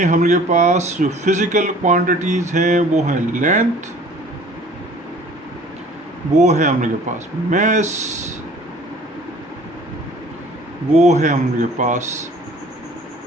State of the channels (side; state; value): both; normal; correlation 0.50